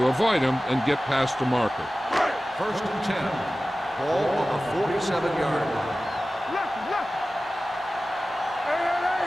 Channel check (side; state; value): both; normal; correlation 0.96